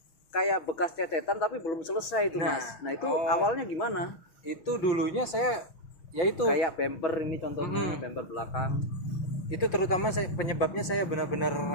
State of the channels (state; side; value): late; right; 6.1 ms